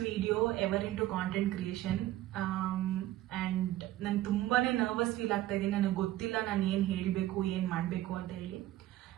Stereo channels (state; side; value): quieter; left; 14.8 dB